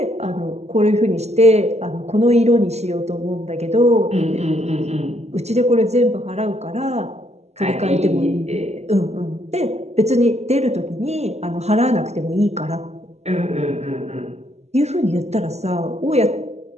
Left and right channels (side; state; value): left; late; 0.32 ms